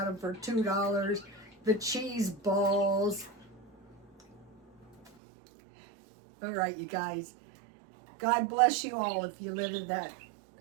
them for $2. The cheese balls. All right, you guys. God bless you all if you live in that.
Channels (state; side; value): drops out; left; at 5.1 s